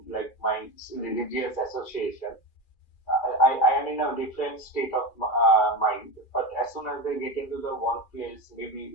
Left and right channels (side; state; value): right; late; 2.4 ms